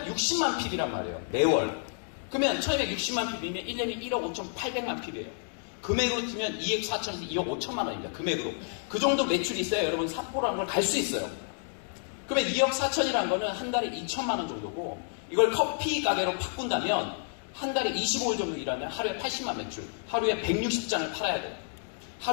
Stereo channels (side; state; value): right; silent; digital silence